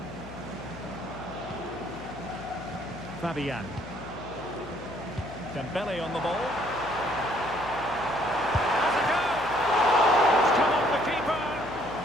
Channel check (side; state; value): left; noise; hum, 15 dB below the sound